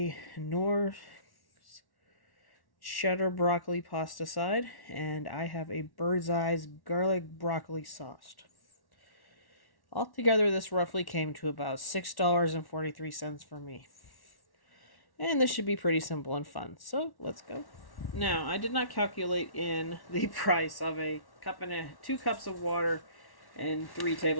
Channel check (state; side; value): late; right; 1.1 ms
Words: Knorr cheddar broccoli pasta side, and I have a Birdeye's garlic broccoli sauce. Altogether, this roughly came to about $6.43 for me. And this should be pretty simple and fun. So let's go. Now, I did not calculate in the price of a cup and 2 cups of water and 3